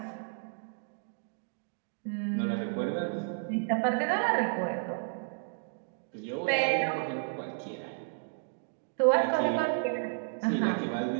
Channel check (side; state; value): left; silent; digital silence